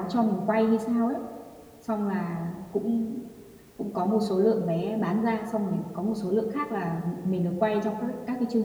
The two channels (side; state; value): both; identical; correlation 1.00